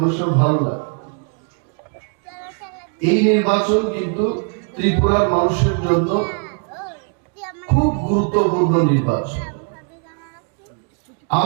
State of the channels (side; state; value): left; quieter; 39.6 dB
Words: সময় ভালো লাগে। এই নির্বাচন কিন্তু ত্রিপুরার মানুষের জন্য খুব গুরুত্বপূর্ণ নির্বাচন।